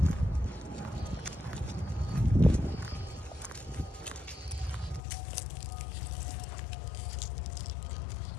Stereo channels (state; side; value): drops out; right; at 5.0 s